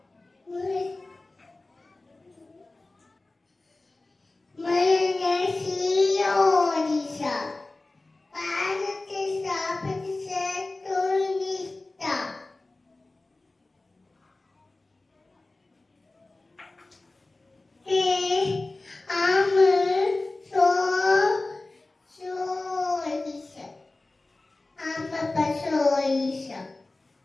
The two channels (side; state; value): right; quieter; 3.1 dB